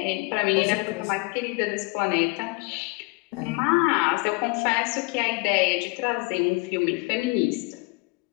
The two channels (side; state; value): right; quieter; 27.2 dB